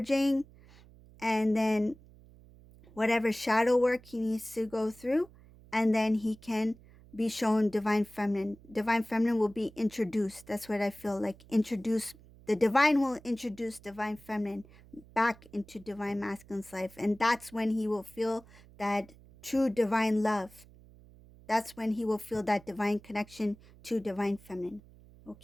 and then whatever shadow work he needs to go through. And then he can be shown divine feminine. Divine feminine will be introduced. That's what I feel like. The divine will introduce divine feminine back into divine masculine's life. And that's when he will feel that true divine love. That's when he will feel that divine connection to divine feminine.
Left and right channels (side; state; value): right; noise; hum, 23 dB below the sound